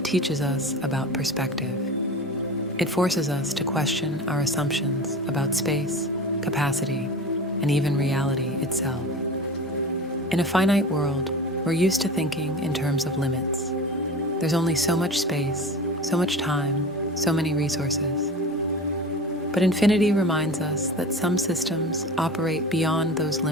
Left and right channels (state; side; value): normal; both; correlation 0.33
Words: teaches us about perspective. It forces us to question our assumptions about space, capacity, and even reality itself. In a finite world, we're used to thinking in terms of limits. There's only so much space, so much time, so many resources. But infinity reminds us that some systems operate beyond those